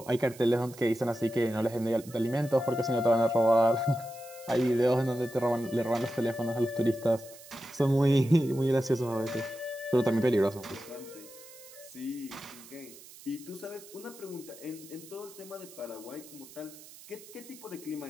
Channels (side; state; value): right; noise; hiss, 19 dB below the sound